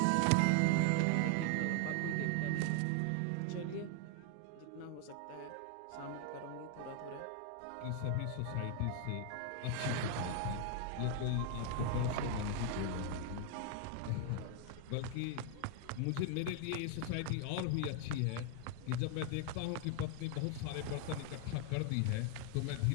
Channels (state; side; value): different; both; correlation 0.00